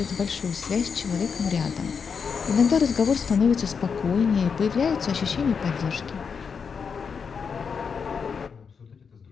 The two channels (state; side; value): quieter; right; 6.0 dB